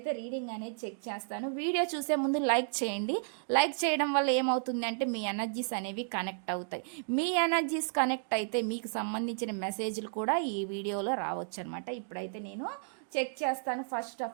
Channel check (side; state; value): left; silent; digital silence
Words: రీడింగ్ అనేది చెక్ చేస్తాను. వీడియో చూసే ముందు లైక్ చేయండి. లైక్ చేయడం వల్ల ఏమవుతుంది అంటే మీ ఎనర్జీస్ అనేవి కనెక్ట్ అవుతాయి. మీ ఎనర్జీస్ కనెక్ట్ అయితే మీకు సంబంధించిన మెసేజ్లు కూడా ఈ వీడియోలో రావచ్చు అనమాట. ఇప్పుడైతే నేను చెక్ చేస్తాను. ఫస్ట్